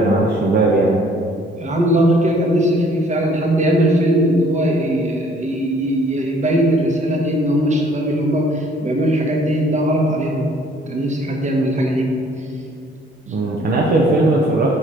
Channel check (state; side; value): normal; both; correlation 0.59